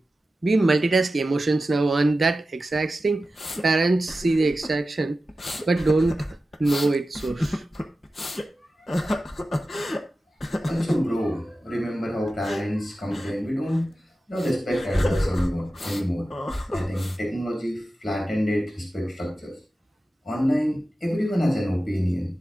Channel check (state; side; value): normal; both; correlation 0.94